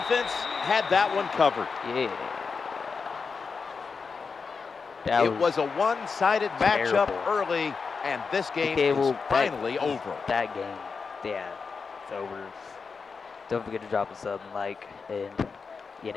had that one covered. Yeah. It was a one-sided matchup early, and this game is finally over. That game, yeah, it's over. Don't forget to drop a sub and like, and, you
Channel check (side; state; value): right; quieter; 5.1 dB